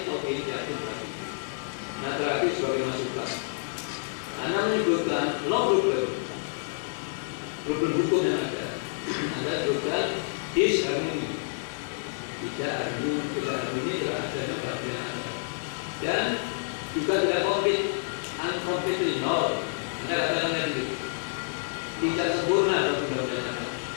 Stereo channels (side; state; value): right; silent; digital silence